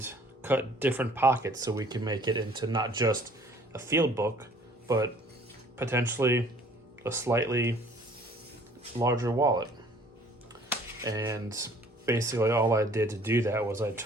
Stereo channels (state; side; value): normal; both; correlation 0.55